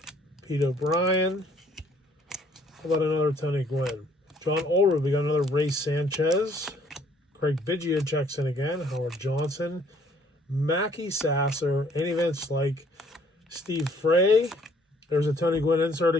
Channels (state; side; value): normal; both; correlation 0.61